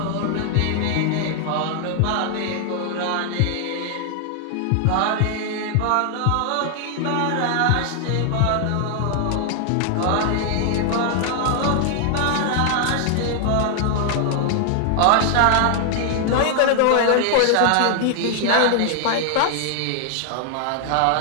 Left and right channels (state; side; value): different; both; correlation 0.00